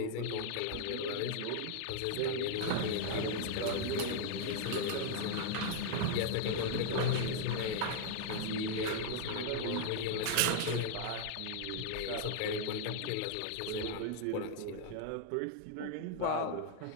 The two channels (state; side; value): different; both; correlation 0.00